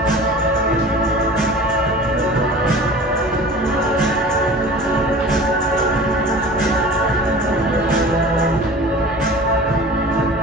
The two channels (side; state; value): both; normal; correlation 0.40